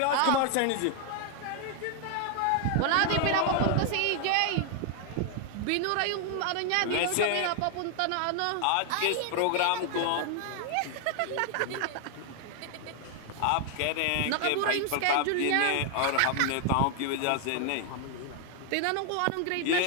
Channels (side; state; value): both; different; correlation 0.00